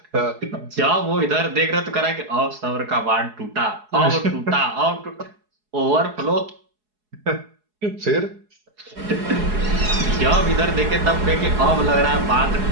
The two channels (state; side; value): late; left; 4.7 ms